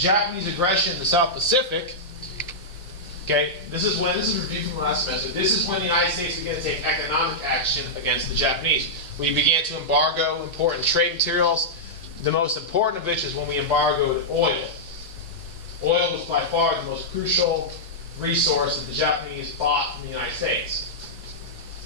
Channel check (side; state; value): both; normal; correlation -0.10